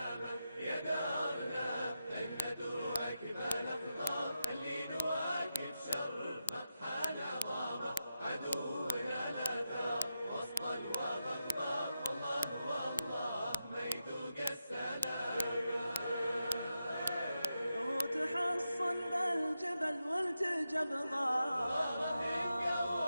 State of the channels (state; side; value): inverted; both; correlation -0.88